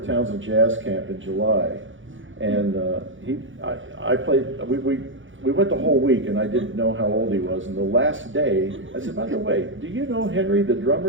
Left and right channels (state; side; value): late; left; 0.56 ms